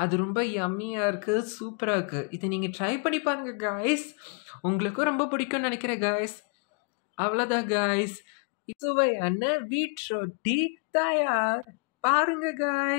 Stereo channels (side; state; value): right; quieter; 39.7 dB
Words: அது ரொம்ப யம்மியாக இருக்குது, சூப்பராக இருக்குது. இதை நீங்கள் ட்ரை பண்ணி பாருங்கள் காய்ஸ், உங்களுக்கும் ரொம்ப பிடிக்கும்னு நினைக்கிறேன் காய்ஸ். அவ்வளோதான் காய்ஸ், சுவையான வீட் ரொட்டி தயார். பாருங்க